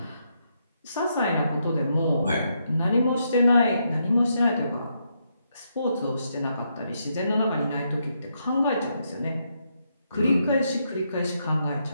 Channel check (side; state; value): both; inverted; correlation -0.79